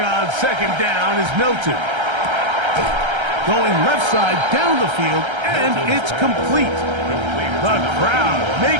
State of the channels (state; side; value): late; left; 1.3 ms